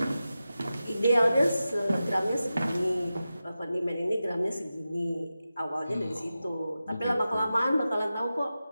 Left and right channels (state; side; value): inverted; both; correlation -0.93